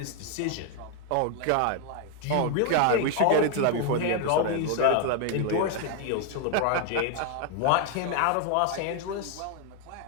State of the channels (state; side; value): different; both; correlation 0.00